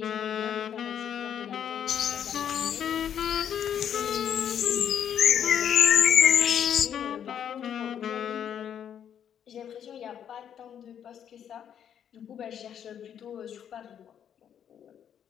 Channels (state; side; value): quieter; right; 9.0 dB